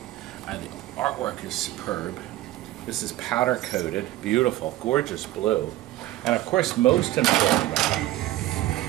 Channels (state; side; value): quieter; left; 15.6 dB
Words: The artwork is superb. This is powder coated, beautiful, gorgeous blue. And of course, most important